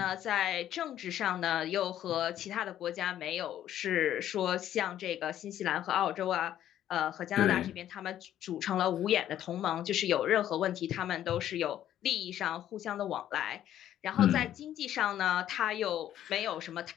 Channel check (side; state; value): right; quieter; 11.5 dB